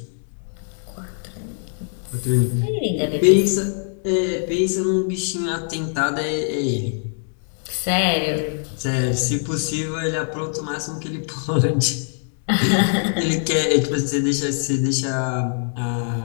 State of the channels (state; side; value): silent; right; digital silence